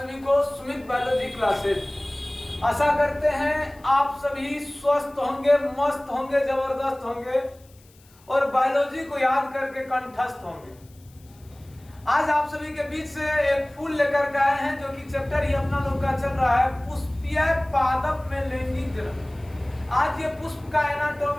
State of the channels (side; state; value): left; noise; hiss, 29 dB below the sound